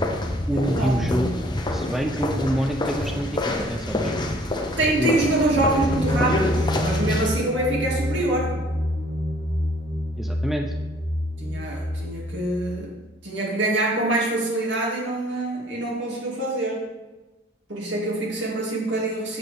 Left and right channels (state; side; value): normal; both; correlation 0.57